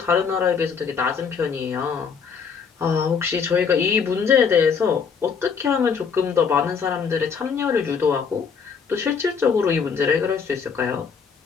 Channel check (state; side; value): quieter; right; 6.2 dB